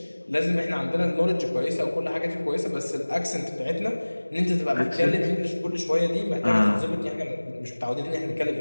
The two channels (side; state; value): both; inverted; correlation -1.00